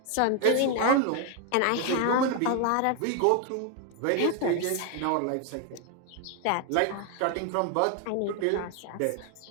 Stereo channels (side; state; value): both; different; correlation 0.01